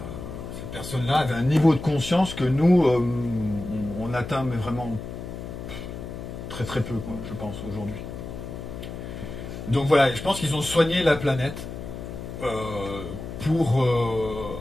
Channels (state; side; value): noise; left; hum, 9 dB below the sound